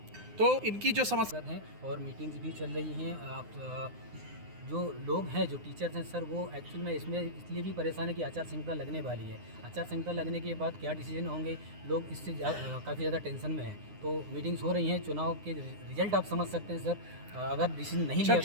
तो इनकी जो समस्या हैं और मीटिंग्स भी चल रही हैं। आप जो लोग हैं जो टीचर्स हैं सर, वो एक्चुअल में इसमें इसलिए भी परेशान है कि आचार संहिता लगने वाली है। आचार संहिता लगने के बाद क्या डिसीजन होंगे, लोग इससे काफ़ी ज़्यादा टेंशन में हैं। तो मीटिंग्स हो रही हैं, चुनाव के रिजल्ट आप समझ सकते हैं सर। अगर डिसीजन नहीं लिया गया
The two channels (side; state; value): left; late; 9.7 ms